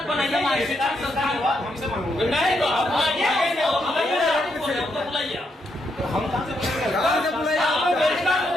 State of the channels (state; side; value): normal; both; correlation 0.79